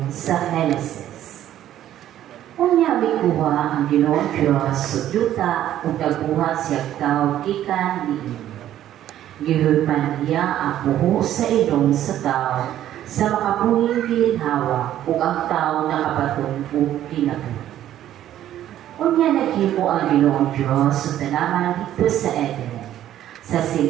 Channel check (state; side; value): quieter; left; 12.0 dB